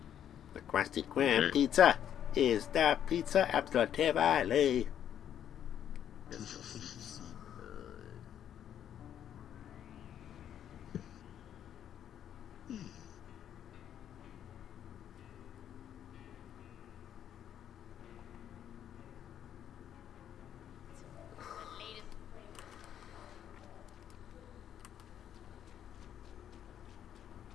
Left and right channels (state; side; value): quieter; right; 9.9 dB